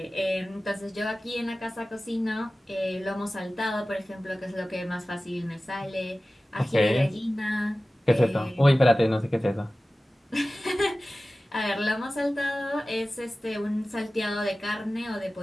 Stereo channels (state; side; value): normal; both; correlation 0.96